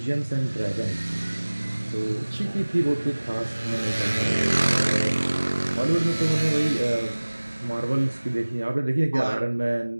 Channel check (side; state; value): both; inverted; correlation -1.00